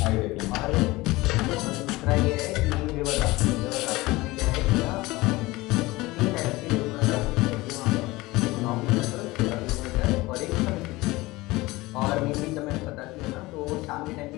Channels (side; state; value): right; quieter; 20.5 dB